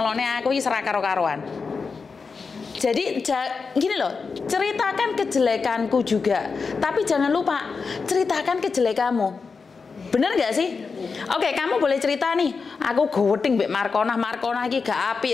aku iki serak karo-karoan. Jadi gini loh, ceritakan kejelekanku juga, tapi jangan lupa ceritakan kejelekanmu. Bener gak sih? Oke, kamu boleh cerita nih, aku goweding mbek Markona iki gak apik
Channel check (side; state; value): right; quieter; 4.9 dB